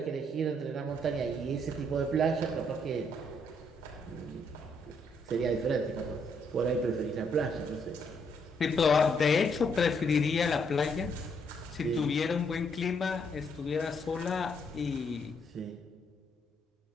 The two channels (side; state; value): both; normal; correlation 0.72